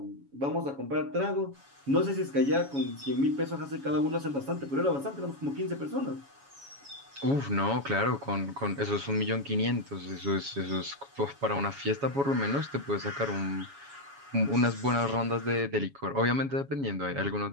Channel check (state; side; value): late; left; 7.2 ms